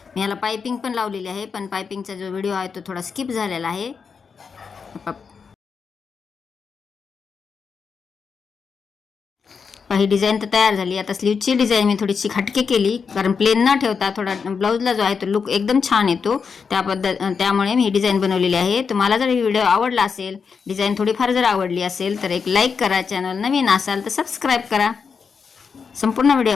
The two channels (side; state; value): right; quieter; 5.8 dB